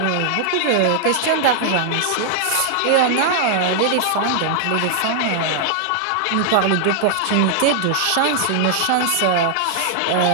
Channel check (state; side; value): different; both; correlation 0.00